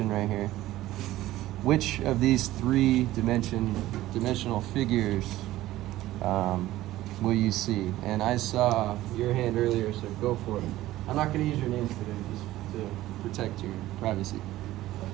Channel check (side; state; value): left; quieter; 15.6 dB